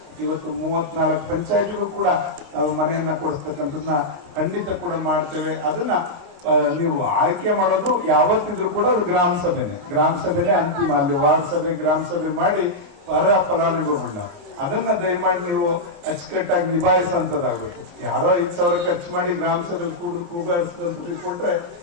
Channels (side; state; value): left; late; 29 ms